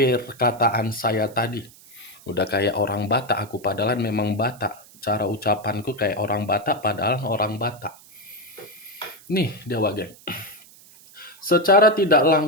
saya tadi? Udah kayak orang Batak aku, padahal memang Batak. Cara ucapanku kayak orang Batak, padahal orang Batak. Nih, dia Wak Geng. Secara tidak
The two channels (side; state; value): right; noise; hiss, 23 dB below the sound